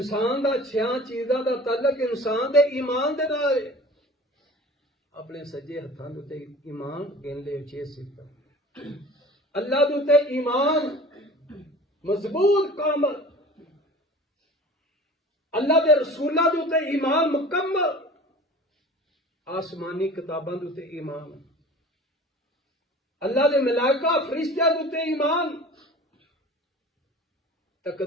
دا 6 چیزاں دا تعلق انسان دے ایمان دے نال ہے۔ اپنے سجے ہتھاں دے اوتے ایمان گن لے 6 صفات۔ اللہ دے اوتے ایمان مضبوط کامل، اللہ دے رسولہ دے اوتے ایمان مکمل، آسمانی کتاباں دے اوتے ایمان، اللہ دے ملائکہ فرشتیاں دے اوتے ایمان،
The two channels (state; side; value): normal; both; correlation 0.42